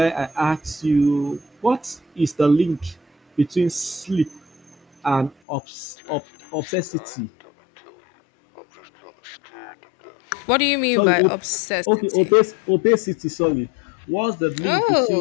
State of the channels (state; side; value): drops out; right; at 5.4 s